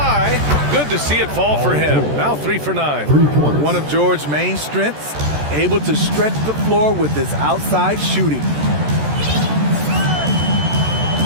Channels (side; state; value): left; late; 14 ms